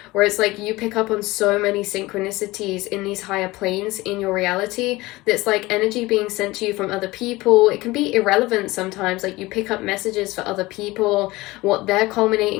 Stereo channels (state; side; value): quieter; right; 20.2 dB